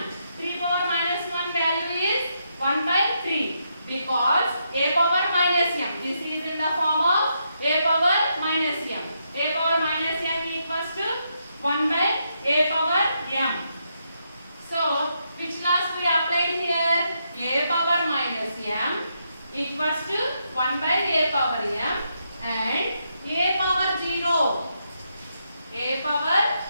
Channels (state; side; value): inverted; both; correlation -0.80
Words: 3 power minus 1 value is 1 by 3 because a power minus m. This is in the form of a power minus m. A power minus m equals to 1 by a power m. So which laws we applied here? A power minus m equals to 1 by a power m and a power 0. A power